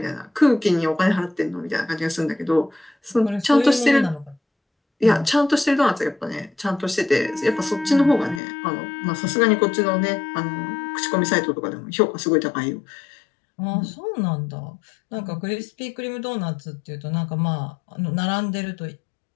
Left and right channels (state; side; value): drops out; right; at 8.4 s